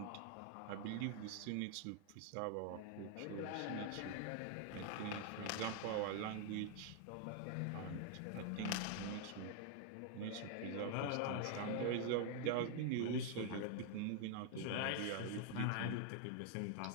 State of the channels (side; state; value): both; different; correlation 0.00